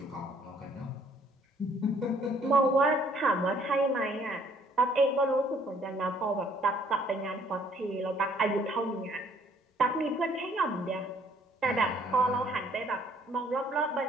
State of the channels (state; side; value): normal; both; correlation 0.62